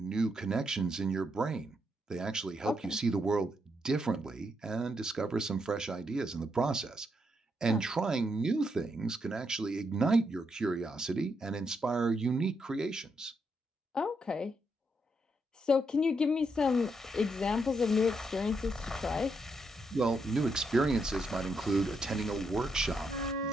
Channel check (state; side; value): normal; both; correlation 0.79